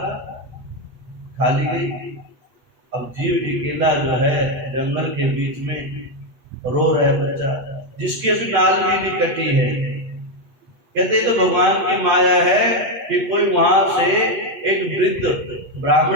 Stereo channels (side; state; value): left; late; 8.4 ms